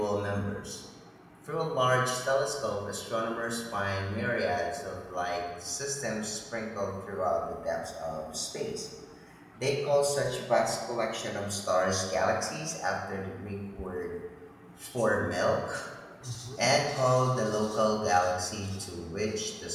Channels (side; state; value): both; identical; correlation 1.00